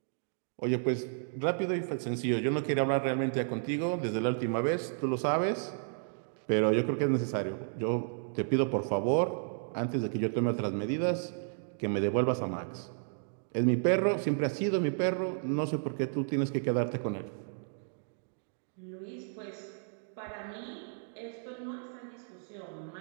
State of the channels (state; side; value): silent; left; digital silence